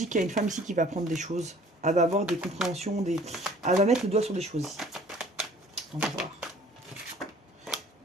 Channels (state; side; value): normal; both; correlation 0.53